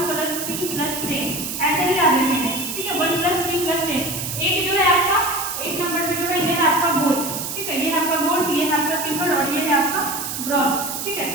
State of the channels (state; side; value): noise; right; hiss, 5 dB below the sound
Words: ऐसे ही याद रखेंगे, ठीक है। 1+3+10। एक जो है आपका 1 नंबर पे जो है ये है आपका गोल्ड, ठीक है। ये है आपका गोल्ड, ये है आपका सिल्वर और ये है आपका ब्रॉन्ज, ठीक है।